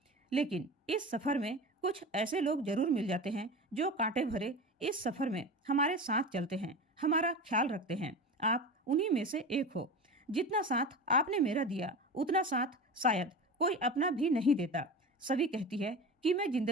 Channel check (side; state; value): both; normal; correlation 0.29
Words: लेकिन इस सफर में कुछ ऐसे लोग जरूर मिल जाते हैं जो कांटे भरे इस सफर में हमारे साथ चलते हैं, हमारा ख्याल रखते हैं। आप उन्हीं में से एक हो। जितना साथ आपने मेरा दिया उतना साथ शायद कोई अपना भी नहीं देता। सभी कहती है कि मैं